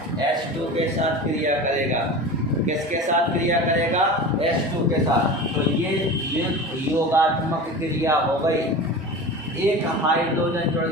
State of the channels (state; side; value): normal; both; correlation 0.32